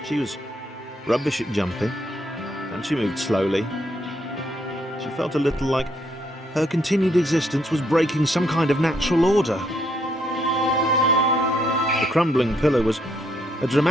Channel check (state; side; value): normal; both; correlation 0.73